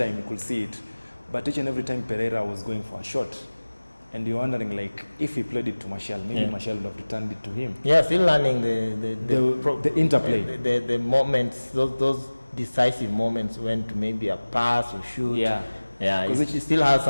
you could see it. But each and every time Pereira was going for a shot. And you're wondering, like, if he played it to Martial, maybe Martial would have returned it to him. Yeah, still learning the interplay. The moments, those decisive moments when to maybe a pass or shoot. Yeah, he still has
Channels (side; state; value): both; inverted; correlation -1.00